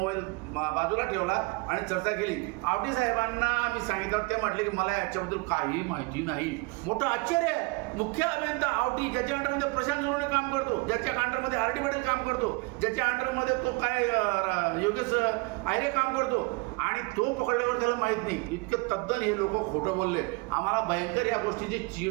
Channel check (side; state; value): left; quieter; 27.7 dB